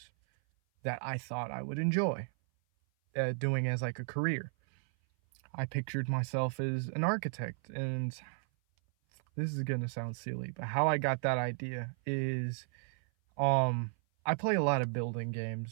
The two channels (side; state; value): left; silent; 55 dB below the other